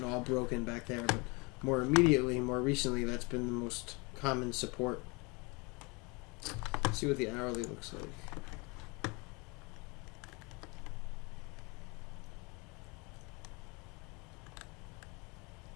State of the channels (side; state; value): right; quieter; 28.2 dB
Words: all broken back there, but more immediately, more recently, that's been the most common support. Let's see what the hourly looks like.